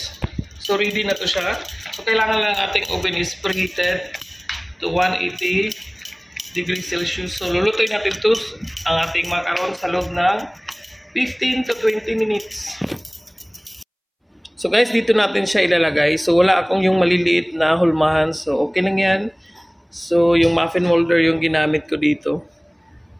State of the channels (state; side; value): identical; both; correlation 1.00